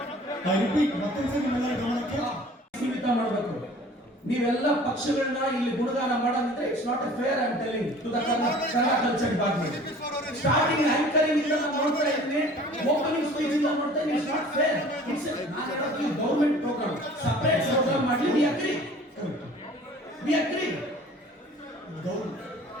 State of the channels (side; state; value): both; normal; correlation 0.48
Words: ಐ ರಿಪೀಟ್, ಮತ್ತೊಂದ್ಸರಿ ನಿಮ್ಮೆಲ್ಲರ ಗಮನಕ್ಕೆ ಸೀಮಿತ ಮಾಡಬೇಕು. ನೀವೆಲ್ಲ ಪಕ್ಷಗಳನ್ನ ಇಲ್ಲಿ ಗುಣಗಾನ ಮಾಡೋದಿದ್ರೆ it's not a fair. I am telling to the Kannada culture department. Starting anchoring ಇಂದ ನಾನು ನೋಡ್ತಾ ಇದ್ದೀನಿ, ಓಪನಿಂಗ್ ಸ್ಪೀಚ್ ಇಂದ ನೋಡ್ತಾ ಇದ್ದೀನಿ. It's not fair. It's government program, separate program ಮಾಡಿ. We agree, we agree.